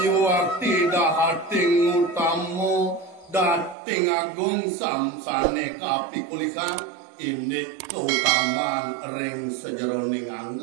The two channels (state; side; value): drops out; left; at 3.8 s